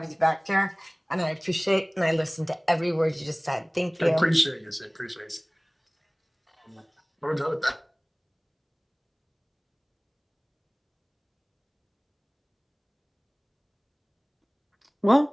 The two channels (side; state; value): both; identical; correlation 1.00